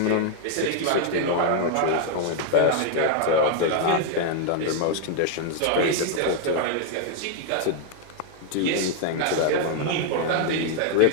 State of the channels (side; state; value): both; different; correlation 0.00